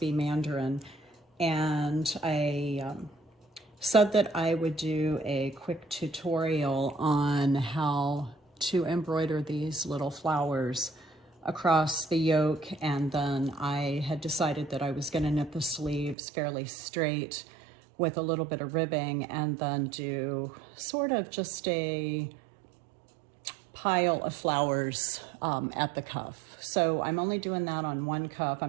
Mandarin. And I said that I would do a quick tutorial on how to embroider these little flowers across the yoke, and then I had decided that I was going to knit the sleeves fairly straight with a little bit of ribbing and then do sort of just a pile of flowers at the cuff. So I'm only doing that on one cuff.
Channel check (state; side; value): drops out; left; at 16.2 s